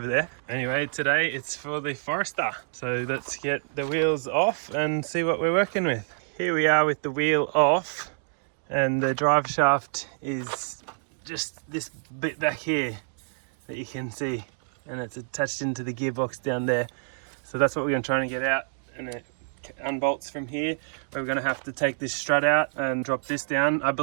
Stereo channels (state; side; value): silent; left; digital silence